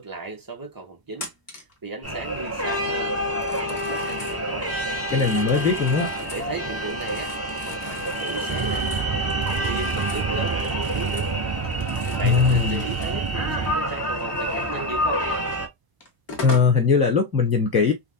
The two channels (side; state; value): left; late; 1.0 ms